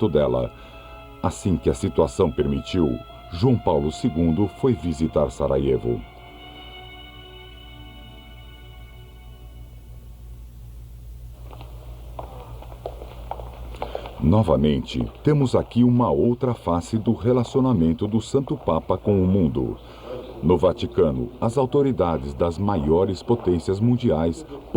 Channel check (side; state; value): both; identical; correlation 1.00